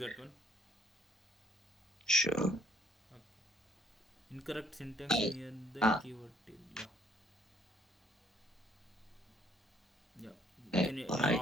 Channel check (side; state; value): both; normal; correlation 0.64